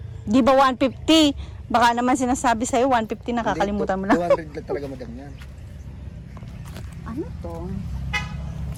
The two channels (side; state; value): both; identical; correlation 1.00